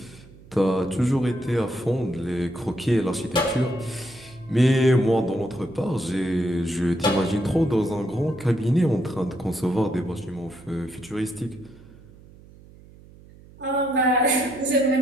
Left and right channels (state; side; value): noise; right; hum, 22 dB below the sound